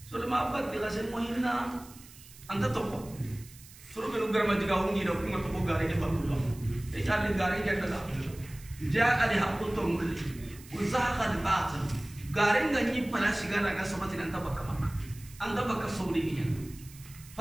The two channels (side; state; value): right; noise; hiss, 20 dB below the sound